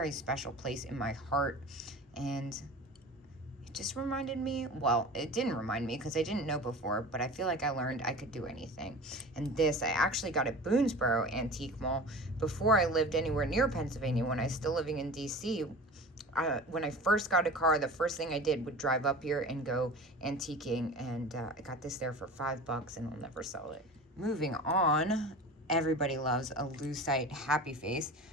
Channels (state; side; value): normal; both; correlation 0.36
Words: special place in my heart. And just reminded me, well, it didn't remind me because I didn't know before, but I feel like I learned I could do anything. And this I actually got at Boonesboro Antique Mall before I lived anywhere near Pennsylvania. When I was still living in DC, when I first got a car, the first thing I did would drive up here and go antiquing, and I got this there for $5 and I'll never sell it. Moving on, everybody loves a lucite happy face.